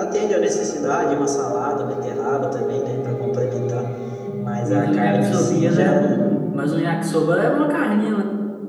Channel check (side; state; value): both; identical; correlation 1.00